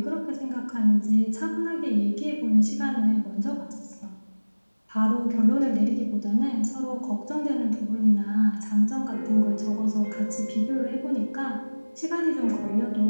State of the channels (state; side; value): inverted; both; correlation -1.00